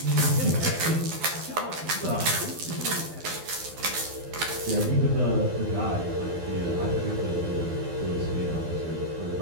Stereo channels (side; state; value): left; late; 12 ms